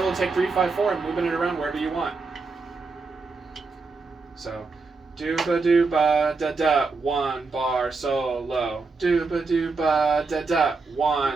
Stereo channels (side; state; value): left; quieter; 4.2 dB